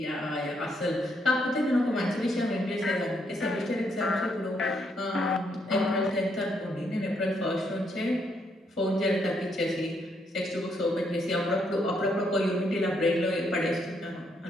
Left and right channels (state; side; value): normal; both; correlation 0.75